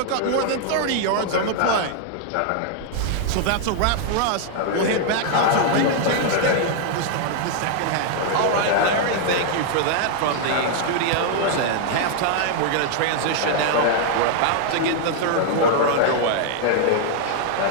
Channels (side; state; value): both; different; correlation 0.00